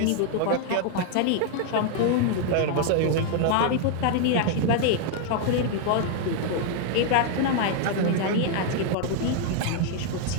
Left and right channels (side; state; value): both; different; correlation 0.00